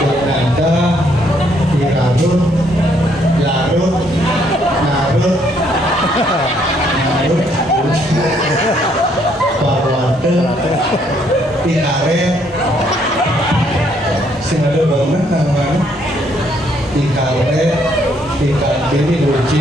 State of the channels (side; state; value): both; normal; correlation 0.69